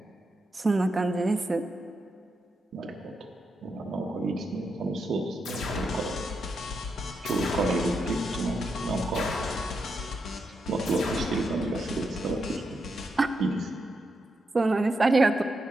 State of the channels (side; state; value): both; normal; correlation 0.84